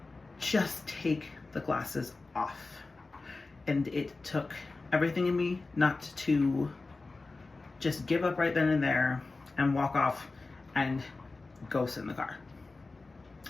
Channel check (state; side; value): quieter; right; 3.6 dB